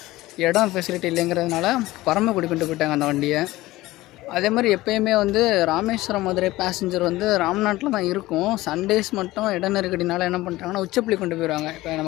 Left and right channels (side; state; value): right; quieter; 18.0 dB